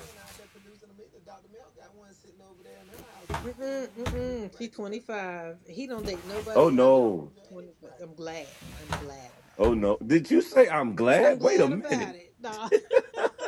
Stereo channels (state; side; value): identical; both; correlation 1.00